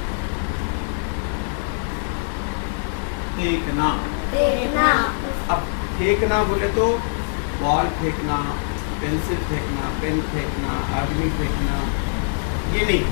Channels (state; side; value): silent; right; digital silence